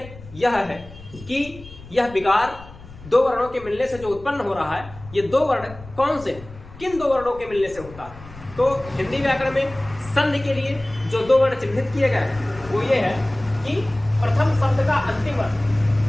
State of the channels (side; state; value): left; noise; rumble, 18 dB below the sound